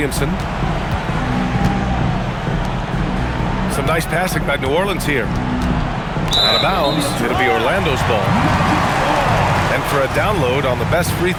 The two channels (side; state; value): both; identical; correlation 1.00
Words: Some nice passing by New Orleans here. Out of bounds, it'll be Orlando's ball. And for a download on the best free